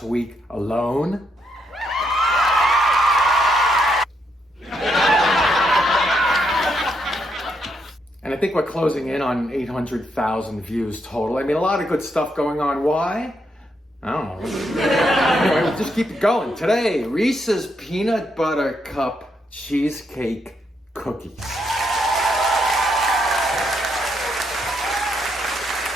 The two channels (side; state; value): both; normal; correlation 0.78